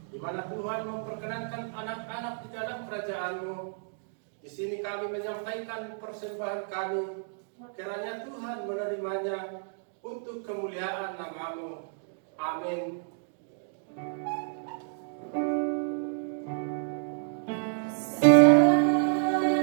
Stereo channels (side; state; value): left; silent; digital silence